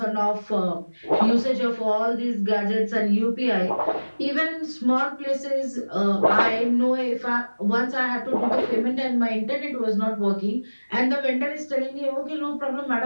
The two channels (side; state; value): both; inverted; correlation -1.00